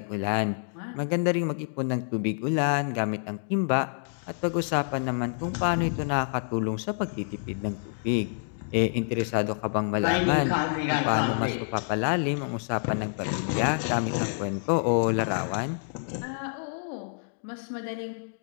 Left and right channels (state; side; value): silent; right; digital silence